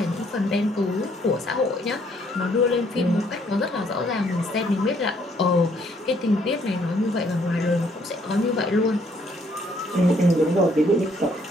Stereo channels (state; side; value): normal; both; correlation 0.67